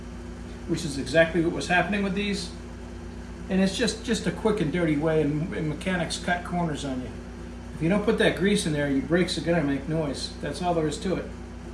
which is exactly what was happening with these. And it's just a quick and dirty way, and mechanics cut corners on you. If you don't put that grease in there, your brakes are gonna make noise. That's all there is to it.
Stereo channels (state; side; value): identical; both; correlation 1.00